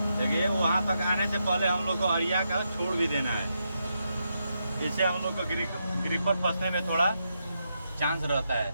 देखिए वहां तक आने से पहले हम लोग को अरिया का छोड़ भी देना है। इससे हम लोग को ग्रिपर फंसने में थोड़ा चांस रहता है,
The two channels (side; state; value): both; inverted; correlation -0.83